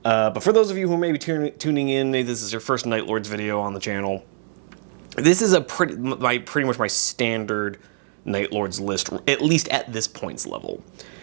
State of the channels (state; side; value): silent; left; 63 dB below the other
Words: But for those of you who may be tuning in, maybe this is your first Night Lords video on the channel, this is pretty much my standard Night Lords list, at least at this points level.